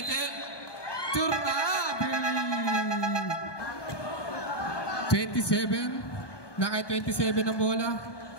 Turnabi! 27. Nakay 27 ang bola.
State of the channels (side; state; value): right; late; 1.2 ms